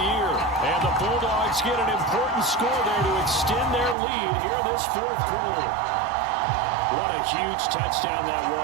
year. And the Bulldogs get an important score there to extend their lead here in this 4th quarter. What a huge touchdown that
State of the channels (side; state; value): left; drops out; at 4.0 s